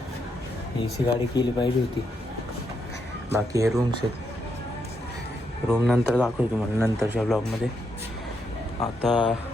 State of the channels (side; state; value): both; normal; correlation 0.79